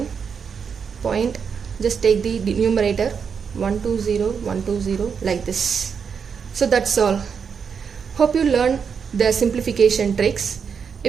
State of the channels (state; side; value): quieter; left; 6.5 dB